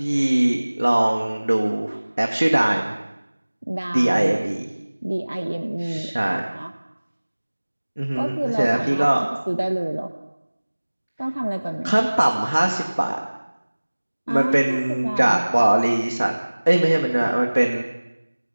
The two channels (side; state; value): both; inverted; correlation -1.00